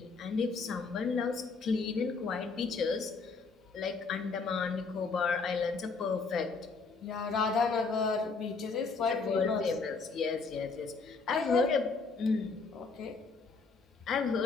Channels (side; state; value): right; quieter; 4.5 dB